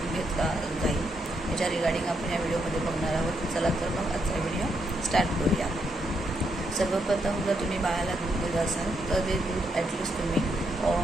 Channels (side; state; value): both; normal; correlation 0.79